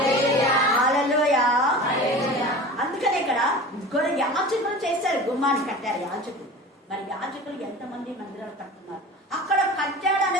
హల్లెలూయా. అందుకనే ఇక్కడ యాజకులు చేశారు, గుమ్మాన్ని కట్టారు యాజకులు. మరి యాజకులు ఎంతమంది మందిరాలు కట్టున్నారు? అక్కడ కట్టాడు అనే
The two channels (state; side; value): normal; both; correlation 0.36